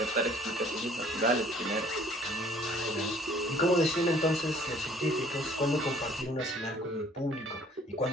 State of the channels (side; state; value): both; normal; correlation 0.56